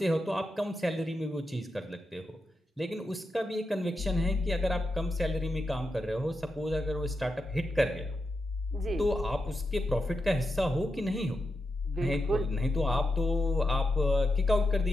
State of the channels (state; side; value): normal; both; correlation 0.87